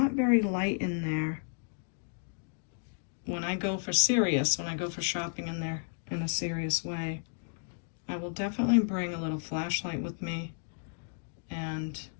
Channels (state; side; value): silent; right; digital silence